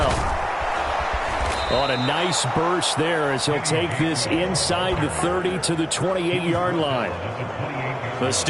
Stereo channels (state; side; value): identical; both; correlation 1.00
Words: On a nice burst there as he'll take this inside the 30 to the 28-yard line. The